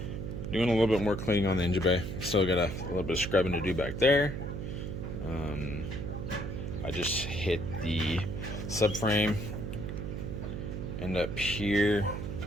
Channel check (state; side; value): noise; right; hum, 5 dB below the sound